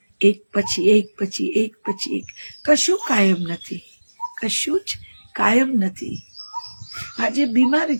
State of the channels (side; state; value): both; inverted; correlation -1.00